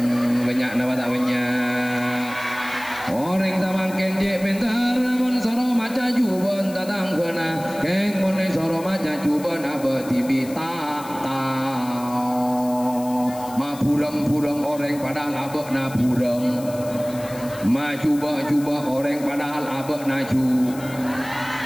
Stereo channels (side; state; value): left; noise; hiss, 17 dB below the sound